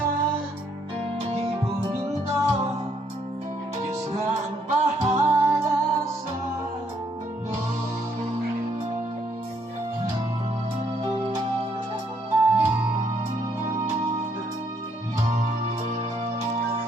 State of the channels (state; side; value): normal; both; correlation 0.70